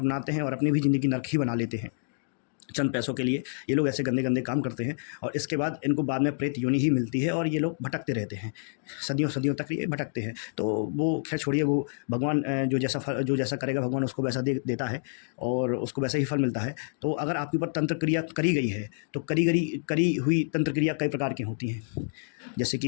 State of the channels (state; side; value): silent; right; digital silence